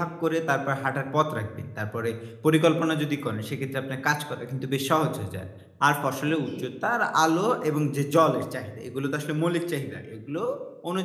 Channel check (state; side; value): identical; both; correlation 1.00